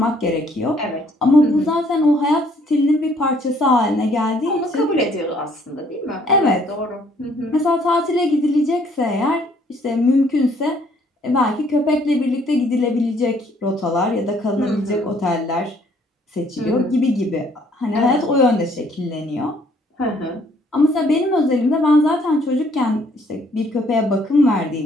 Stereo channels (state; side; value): normal; both; correlation 0.63